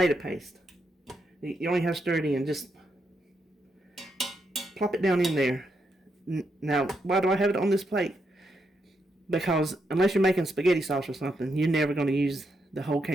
paste. You only have to stir it in. Just plop it down in there. Now, why do I have it on this plate? Because unless you're making spaghetti sauce or something, you're never going to use the whole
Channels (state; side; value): normal; both; correlation 0.81